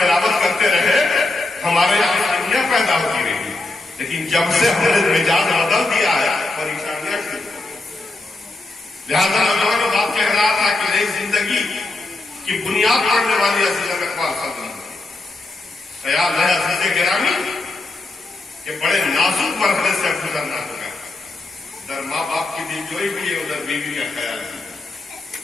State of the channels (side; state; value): right; quieter; 3.1 dB